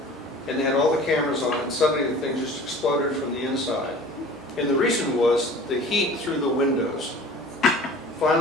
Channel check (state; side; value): normal; both; correlation 0.44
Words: And they had all the cameras on, and suddenly the thing just exploded from the inside. And the reason was the heat through the windows